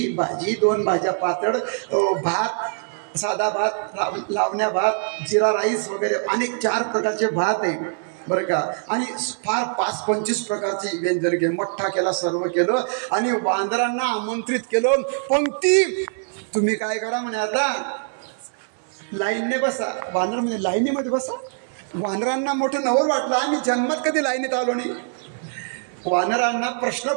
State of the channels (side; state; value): left; silent; 57 dB below the other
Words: भाजी, 2 भाज्या पातळ, भात, साधा भात, लावण्या भात, जिरा राईस वगैरे अनेक 4 प्रकारचे भात आहे बरं का. आणि फार 5-25 प्रकारची व्यंजन केलं. मठ्ठा केला, सर्व केलं. आणि वानरांना आमंत्रित केलं. पंक्ती. तुम्ही काय करा म्हणे, आता लाईनने बसा. वानर म्हणजे लाईनीमध्ये बसा. वानरांना मोठं नवल वाटलं, आम्ही जन्मात कधी लाईनीत आलो नाही. वानरांना प्रश्न